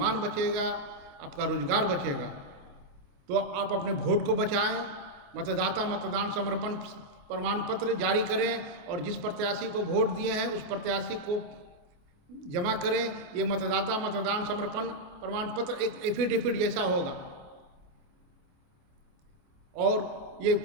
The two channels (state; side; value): late; left; 28 ms